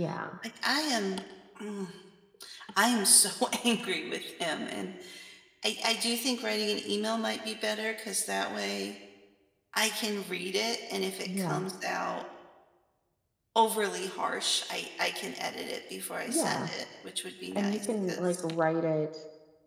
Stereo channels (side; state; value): both; identical; correlation 1.00